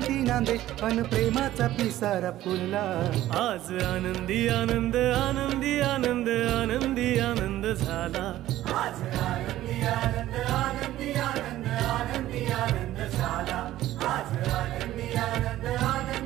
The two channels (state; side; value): quieter; left; 14.3 dB